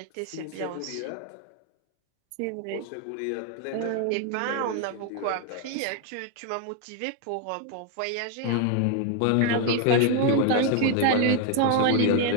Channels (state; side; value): different; both; correlation 0.00